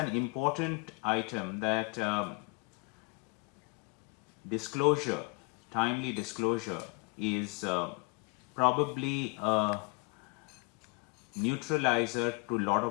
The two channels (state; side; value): quieter; right; 31.4 dB